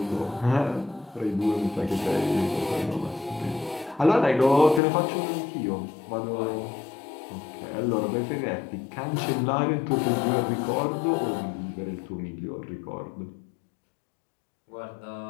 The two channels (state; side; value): drops out; right; at 4.8 s